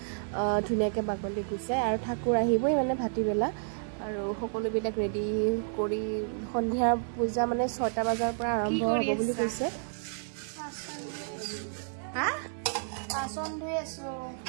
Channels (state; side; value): silent; left; digital silence